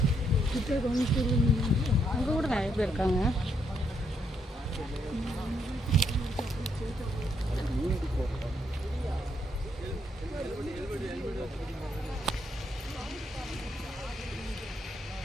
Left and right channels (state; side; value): normal; both; correlation 0.75